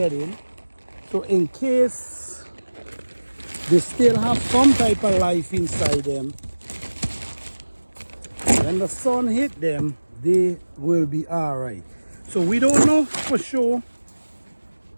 in. So in case they still have some type of life inside them, when the sun hit them, they will be all right. So we don't know for sure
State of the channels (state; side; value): inverted; both; correlation -1.00